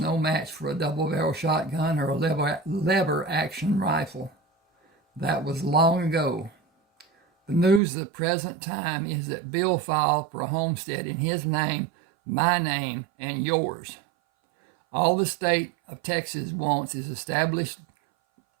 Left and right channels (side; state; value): left; drops out; at 7.8 s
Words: no match for a double-barrel shotgun or a lever-action rifle. That was long ago. The news of the present time is that Bill filed for a homestead in his name, my name, and yours. All the state of Texas wants is established